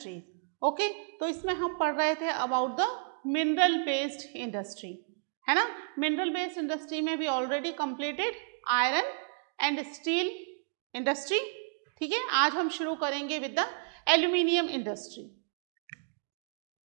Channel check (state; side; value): silent; left; digital silence